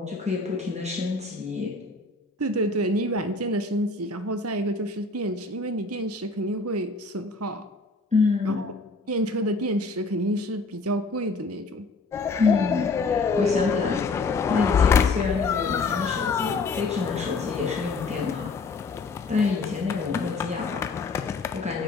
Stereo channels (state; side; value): quieter; right; 3.6 dB